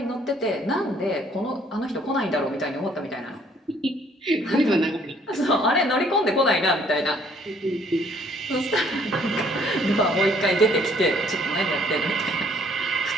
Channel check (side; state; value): both; normal; correlation 0.62